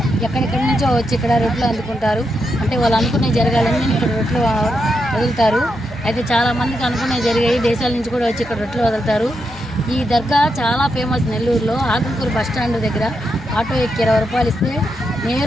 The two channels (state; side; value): normal; both; correlation 0.84